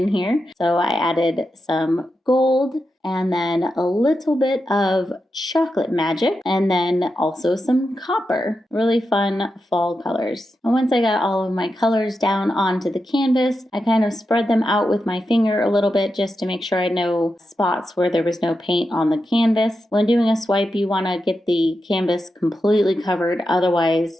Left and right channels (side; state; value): both; normal; correlation 0.88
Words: here. So I added some gold and then a little bit of chocolate magic and then also some copper. Really fun fall colors. And once I got all of my colors down onto the canvas, I kind of spread them out with my finger a little bit just to make sure I know spots where there was no paint on the canvas. When doing a swipe, you want to get the canvas completely covered.